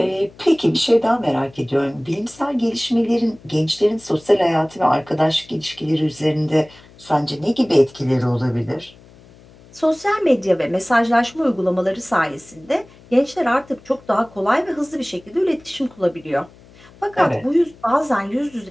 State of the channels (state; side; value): noise; left; hum, 25 dB below the sound